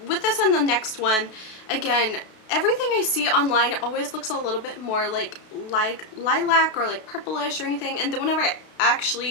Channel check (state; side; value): late; right; 32 ms